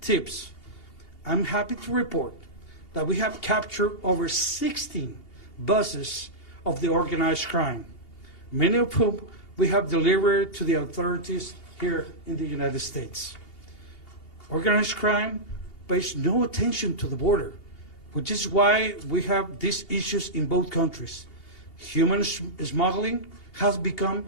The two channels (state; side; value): late; right; 2.8 ms